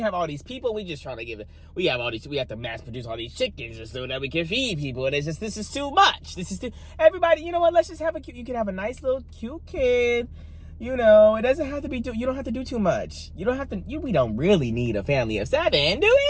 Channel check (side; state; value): both; identical; correlation 1.00